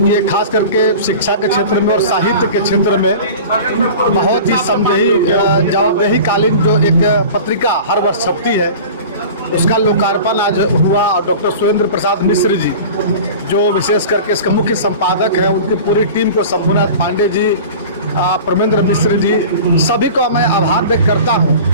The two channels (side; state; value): both; inverted; correlation -0.37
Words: ये खास करके शिक्षा के क्षेत्र में और साहित्य के क्षेत्र में बहुत ही जवाबदेही कालीन जो एक पत्रिका हर वर्ष छपती है, उसका लोकार्पण आज हुआ। और डॉक्टर सुरेंद्र प्रसाद मिश्र जी जो विशेष करके इसका मुख्य संपादक है, उनकी पूरी टीम को, शंभुनाथ पांडे जी, परमेंद्र मिश्र जी, सभी को मैं आभार व्यक्त करता हूँ